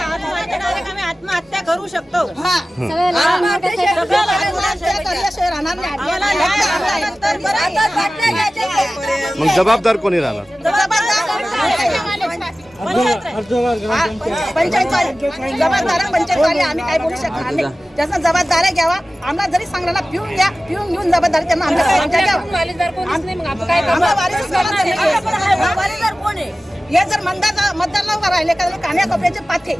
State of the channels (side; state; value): both; normal; correlation 0.96